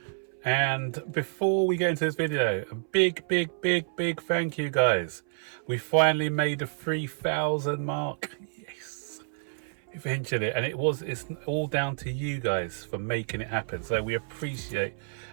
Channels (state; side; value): silent; left; 59 dB below the other